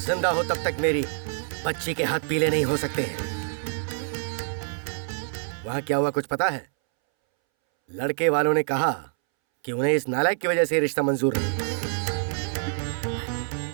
हो तब तक मेरी बच्ची के हाथ पीले नहीं हो सकते हैं। वहां क्या हुआ कुछ पता है? लड़के वालों ने कहा कि उन्हें इस नालायक की वजह से रिश्ता मंजूर नहीं।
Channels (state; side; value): silent; left; 61 dB below the other